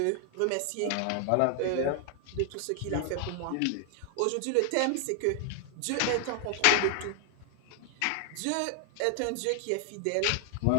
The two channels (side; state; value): both; different; correlation 0.00